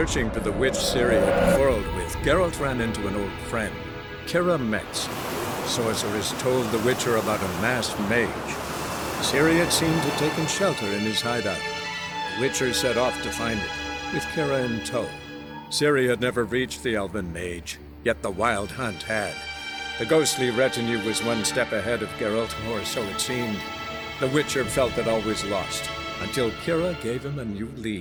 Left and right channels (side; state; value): both; identical; correlation 1.00